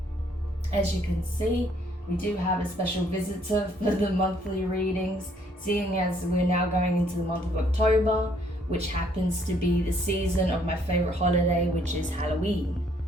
As you can see, we do have a special visitor for the monthly readings, seeing as we're now going into the month of October, which happens to be the season of my favorite holiday, which is Halloween.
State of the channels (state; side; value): normal; both; correlation 0.66